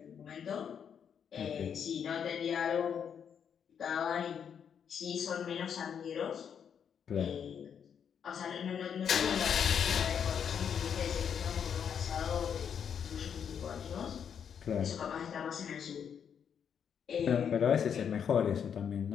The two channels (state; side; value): quieter; right; 7.8 dB